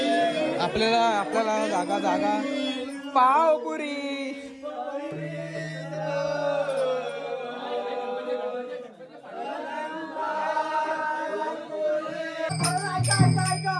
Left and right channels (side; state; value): both; identical; correlation 1.00